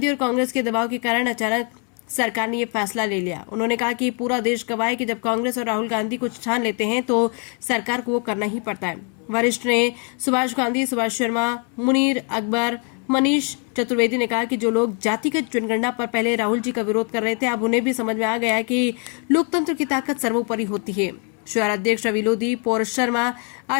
और कांग्रेस के दबाव के कारण अचानक सरकार ने ये फैसला ले लिया। उन्होंने कहा कि पूरा देश गवाह है कि जब कांग्रेस और राहुल गांधी कुछ ठान लेते हैं तो सरकार को वो करना ही पड़ता है। वरिष्ठ ने सुभाष गांधी, सुभाष शर्मा, मुनीर अकबर, मनीष चतुर्वेदी ने कहा कि जो लोग जातिगत जनगणना पर पहले राहुल जी का विरोध कर रहे थे, अब उन्हें भी समझ में आ गया है कि लोकतंत्र की ताकत सर्वोपरि होती है। शहर अध्यक्ष रवि लोधी, पौरुष शर्मा,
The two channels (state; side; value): quieter; right; 37.1 dB